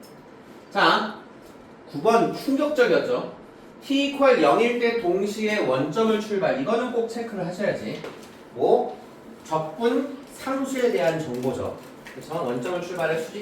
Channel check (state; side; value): identical; both; correlation 1.00